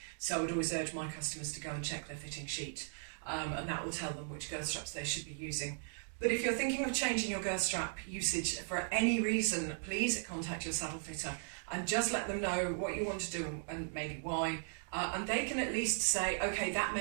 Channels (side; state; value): left; silent; digital silence